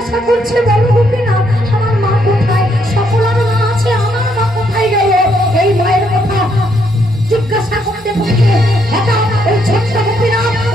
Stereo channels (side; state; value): both; normal; correlation 0.73